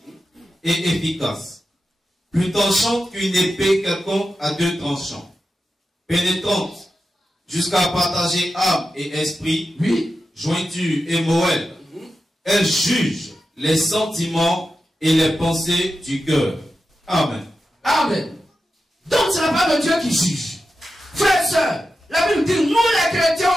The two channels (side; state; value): both; normal; correlation 0.91